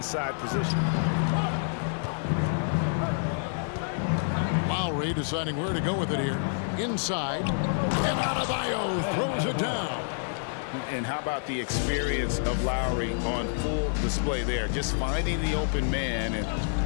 position. Lowry deciding where to go with it here. Inside. And Adebayo throws it down. And how about the experience of Lowry on full display there? Just finding the open man, and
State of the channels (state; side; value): silent; right; digital silence